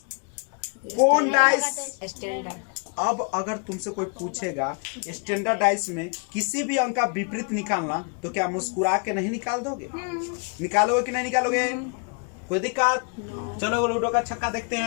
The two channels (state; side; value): quieter; right; 38.2 dB